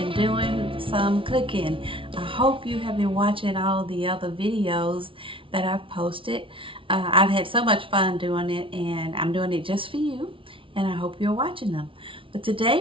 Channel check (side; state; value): left; late; 0.25 ms